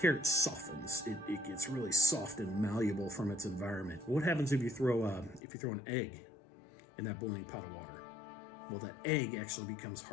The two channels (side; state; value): right; drops out; at 5.4 s